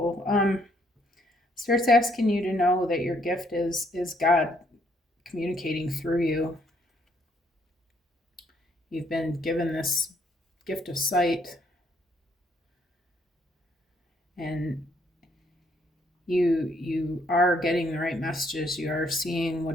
Spirit's asking you to know that your gift is God communicating through you. You've been given this gift of sight, and you are getting the right messages. You are seeing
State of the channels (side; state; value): both; normal; correlation 0.69